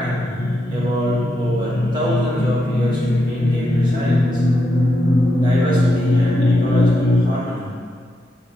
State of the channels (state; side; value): normal; both; correlation 0.83